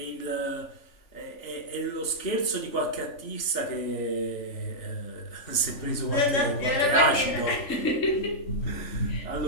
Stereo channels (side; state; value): right; late; 3.4 ms